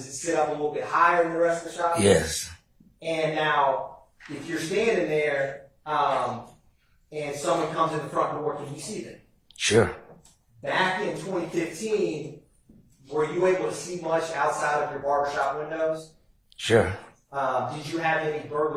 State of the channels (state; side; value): identical; both; correlation 1.00